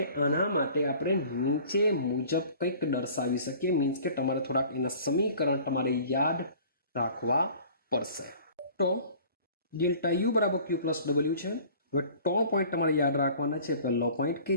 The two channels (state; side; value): inverted; both; correlation -0.48